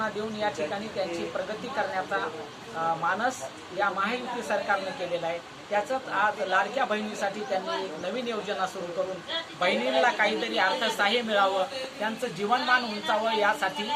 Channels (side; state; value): both; identical; correlation 1.00